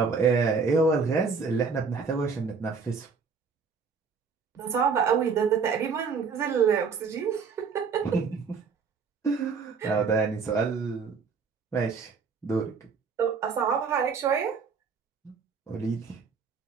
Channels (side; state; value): left; quieter; 5.4 dB